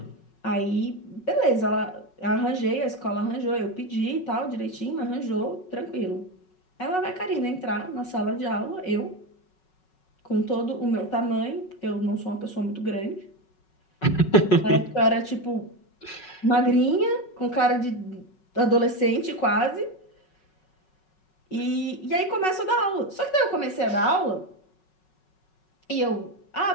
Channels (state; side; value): late; right; 5.4 ms